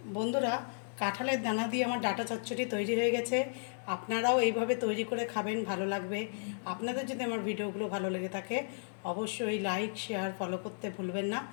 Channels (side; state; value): right; silent; digital silence